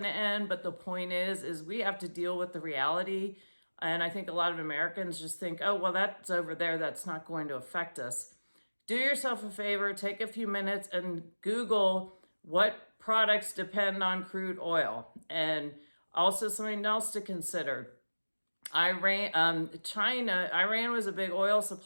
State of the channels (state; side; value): inverted; both; correlation -1.00